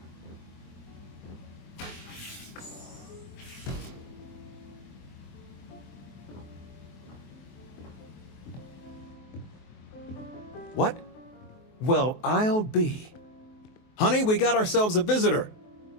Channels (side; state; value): right; late; 23 ms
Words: What? Well, I'll be. Honey, we got ourselves a visitor.